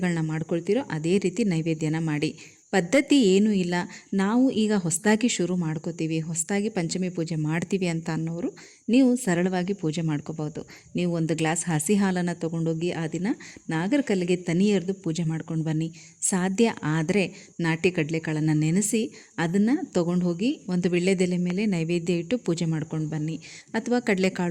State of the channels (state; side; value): identical; both; correlation 1.00